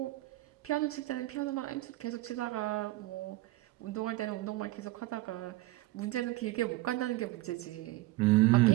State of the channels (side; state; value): left; quieter; 18.4 dB